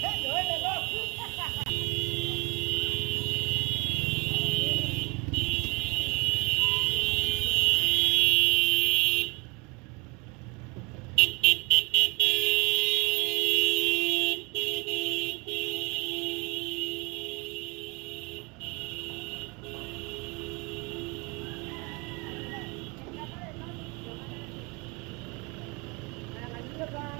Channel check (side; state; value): left; quieter; 27.9 dB